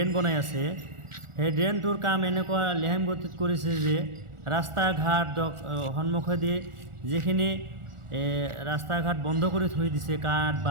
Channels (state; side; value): late; left; 1.4 ms